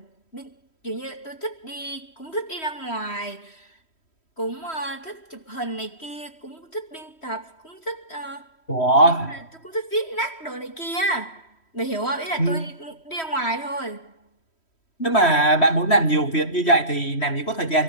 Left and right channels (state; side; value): late; right; 3.1 ms